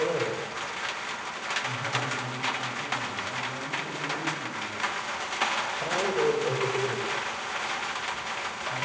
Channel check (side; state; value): both; identical; correlation 1.00